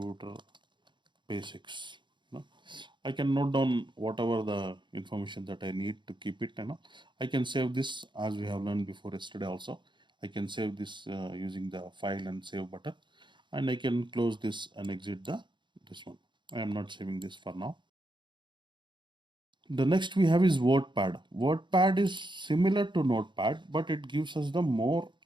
basics. I can note down whatever the information that I need to keep it. I can save this as we have learned before yesterday also. I can save this using the file and save button, and I can close this and exit this one. I am not saving this for now. The next we have is WordPad. WordPad is similar to Notepad, but it gives us the more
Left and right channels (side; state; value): left; late; 0.23 ms